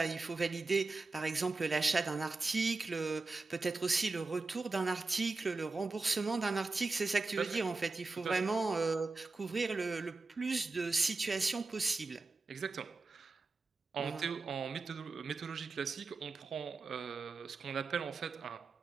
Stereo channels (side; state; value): left; quieter; 3.7 dB